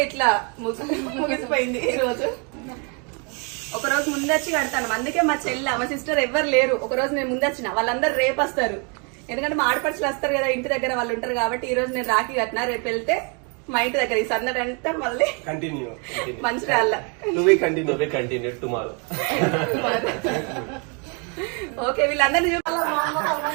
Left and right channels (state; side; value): quieter; left; 35.5 dB